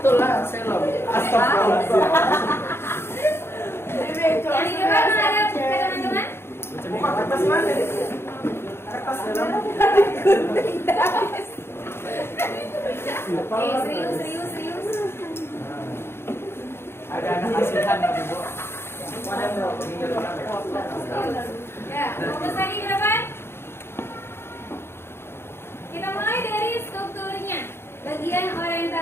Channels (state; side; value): late; right; 0.12 ms